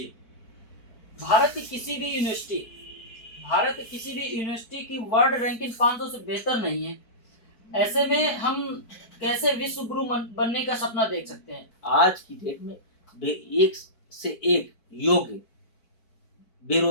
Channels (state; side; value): late; right; 4.5 ms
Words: भारत की किसी भी यूनिवर्सिटी की वर्ल्ड रैंकिंग 500 से बेहतर नहीं है। ऐसे में हम कैसे विश्व गुरु बनने का सपना देख सकते हैं। आज की डेट में एक से एक योग्य